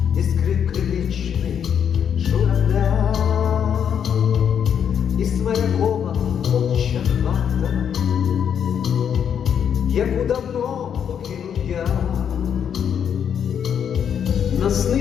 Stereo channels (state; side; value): quieter; right; 8.2 dB